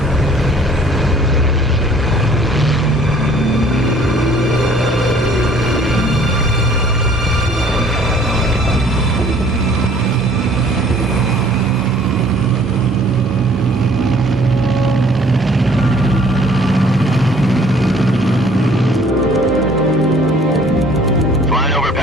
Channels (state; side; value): normal; both; correlation 0.55